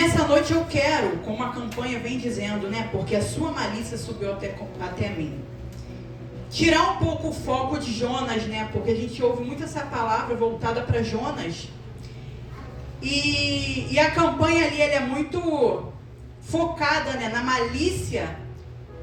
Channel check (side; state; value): both; identical; correlation 1.00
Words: noite eu quero, como a campanha vem dizendo, né, porque a sua malícia subiu até mim, tirar um pouco o foco de Jonas, né, porque a gente ouve muito essa palavra voltada para Jonas, e a campanha ali ela é muito focada, né, na malícia